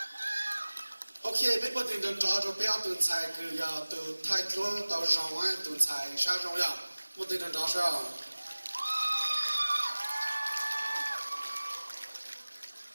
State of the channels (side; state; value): both; inverted; correlation -1.00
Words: OK， bên bờ tiền đơn trò cho bé tuần sai cứ ya từ thái thua tàu rong ấy tuần sai sa rong ya, bờ tiền đơn trò sao?